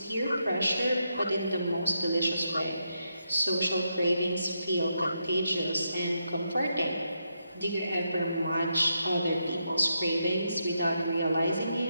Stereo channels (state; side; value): inverted; both; correlation -0.82